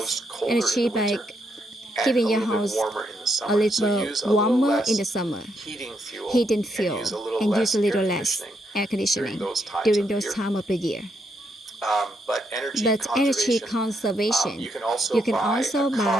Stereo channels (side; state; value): both; normal; correlation 0.78